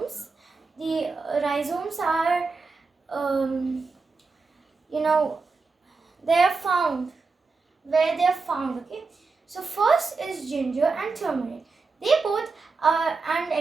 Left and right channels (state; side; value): quieter; left; 4.3 dB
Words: are they are found where they are found. Okay, so first is ginger and turmeric. They both are and